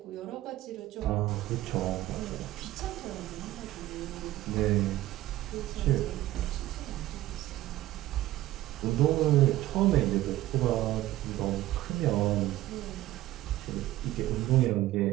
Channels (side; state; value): left; quieter; 15.8 dB